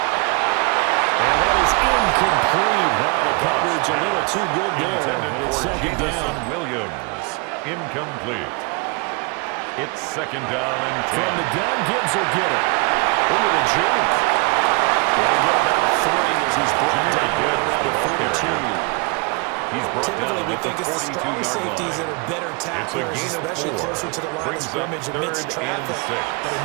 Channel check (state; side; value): quieter; left; 30.4 dB